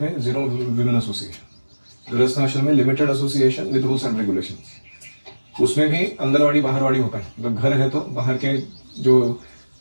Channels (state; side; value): inverted; both; correlation -1.00